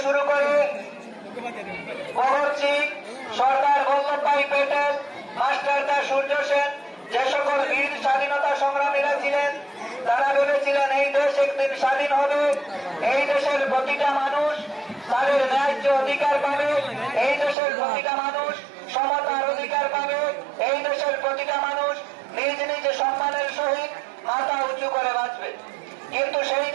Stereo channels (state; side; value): drops out; left; at 17.6 s